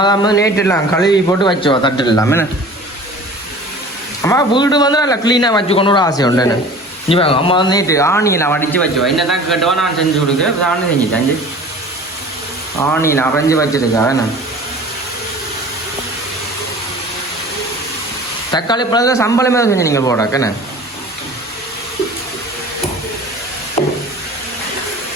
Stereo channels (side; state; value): both; normal; correlation 0.42